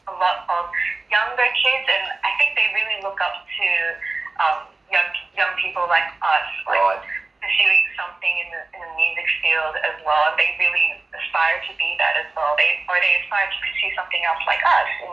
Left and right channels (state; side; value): quieter; left; 3.4 dB